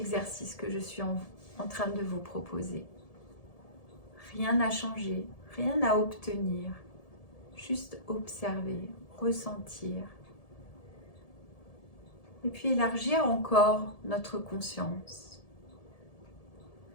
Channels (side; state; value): right; late; 1.7 ms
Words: que je suis en train de vous proposer. Rien à changer, rien à obtenir, juste observer, ressentir Et puis élargir encore notre conscience.